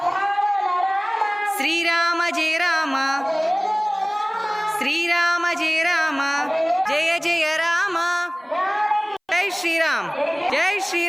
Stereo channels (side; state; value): both; identical; correlation 1.00